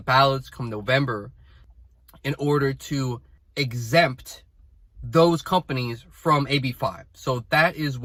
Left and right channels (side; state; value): both; identical; correlation 1.00